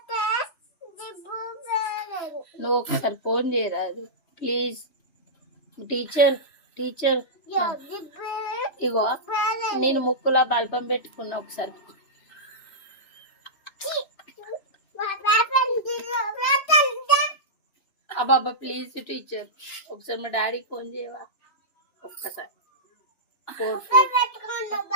నువ్వు ఒకసారి ఫోన్ చేయరాదు ప్లీజ్. టీచర్ ఇగో నేను ముక్కులో బల్బం పెట్టుకున్నా, ఒకసారి అబ్బాబ్బా ప్లీజ్ టీచర్ ఒకసారి మా డాడీకి ఫోన్ చేయవా? ఒక్కసారి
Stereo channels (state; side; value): late; right; 2.9 ms